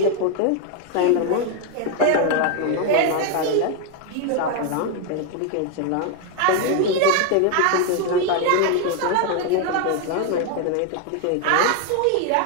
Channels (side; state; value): both; different; correlation 0.01